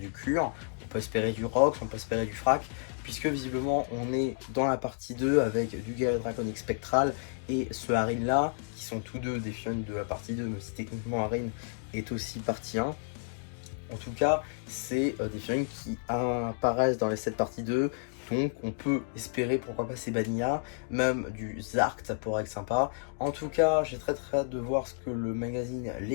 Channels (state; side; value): silent; right; digital silence